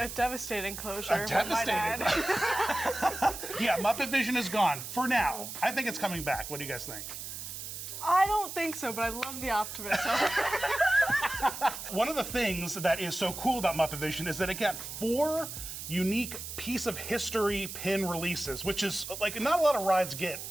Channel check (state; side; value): noise; right; hiss, 8 dB below the sound